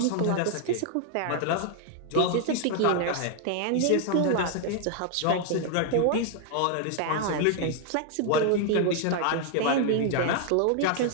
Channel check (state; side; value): different; both; correlation 0.00